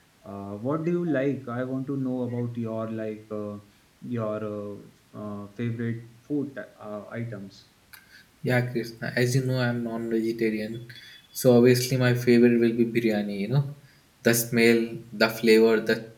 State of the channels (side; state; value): both; identical; correlation 1.00